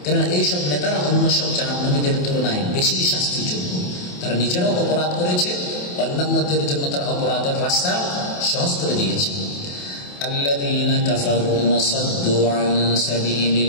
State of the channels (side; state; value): right; late; 28 ms